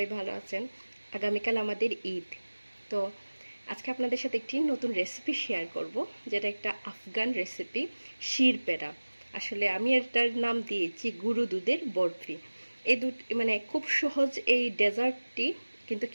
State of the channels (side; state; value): both; inverted; correlation -1.00